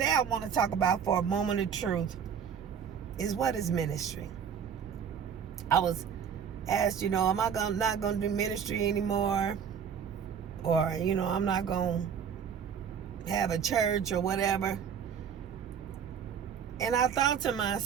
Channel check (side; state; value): left; quieter; 7.5 dB